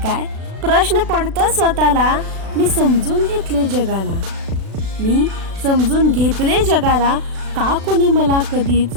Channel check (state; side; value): late; left; 36 ms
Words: काय प्रश्न पडतो स्वतःला. मी समजून घेतले जगाला, मी समजून घेतले जगाला. का कोणी मला कधीच